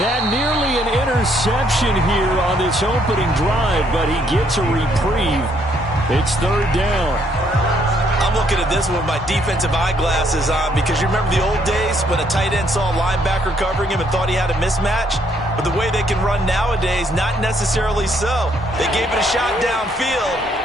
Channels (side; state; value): both; normal; correlation 0.69